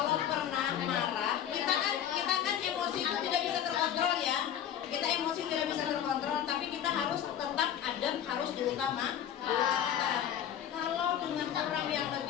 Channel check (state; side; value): quieter; right; 9.9 dB